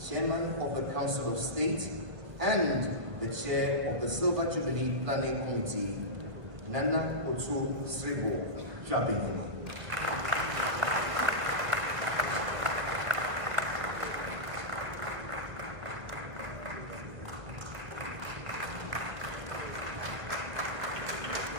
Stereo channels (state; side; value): late; left; 1.4 ms